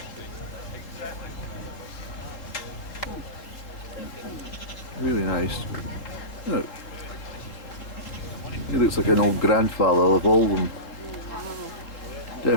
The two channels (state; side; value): late; right; 3.8 ms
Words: Really nice. Look. He looks like an old grandfather of all of them.